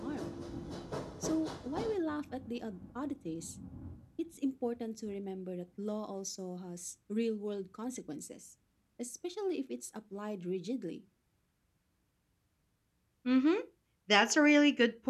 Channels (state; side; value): identical; both; correlation 1.00